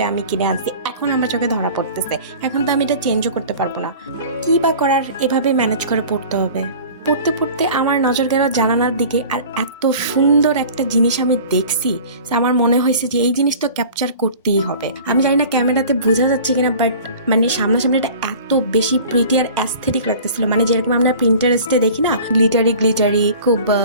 আমি কিনে আনছি, এখন আমার চোখে ধরা পড়তেছে। এখন তো আমি এটা চেঞ্জও করতে পারবো না, কি বা করার, এভাবে ম্যানেজ করে পড়তে হবে। পড়তে পড়তে আমার নজর গেল জানালার দিকে, আর এত সুন্দর একটা জিনিস আমি দেখছি, আমার মনে হয়েছে যে এই জিনিস তো ক্যাপচার করতেই হবে। আমি জানি না ক্যামেরাতে বোঝা যাচ্ছে কিনা, বাট মানে সামনাসামনি এটা এত বেশি প্রিটি আর অ্যাস্থেটিক লাগতেছিল। মানে যেরকম আমরা প্রিন্টারেস্টে দেখি না, গ্লিটারি খুব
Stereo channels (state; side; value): inverted; both; correlation -0.43